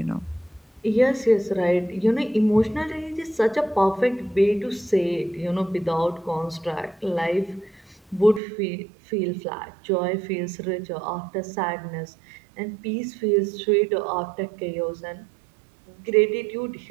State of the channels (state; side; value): drops out; left; at 8.4 s